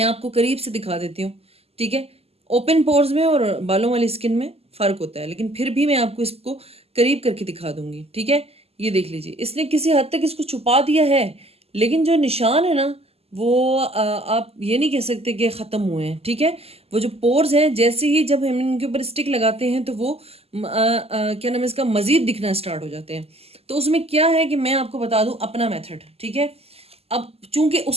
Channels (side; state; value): left; late; 0.29 ms